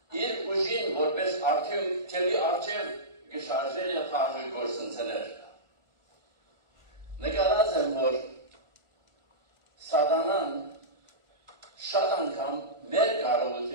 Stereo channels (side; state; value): left; late; 1.4 ms